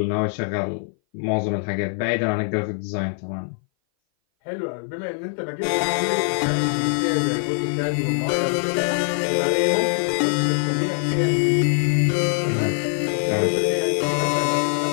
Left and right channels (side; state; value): right; silent; 59 dB below the other